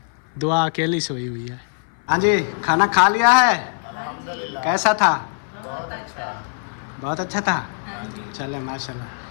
दुआ अकेली सोई हुई है। हाँ जी, खाना खा लिया है? कैसा था? बहुत अच्छा था। चले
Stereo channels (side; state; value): right; silent; 58 dB below the other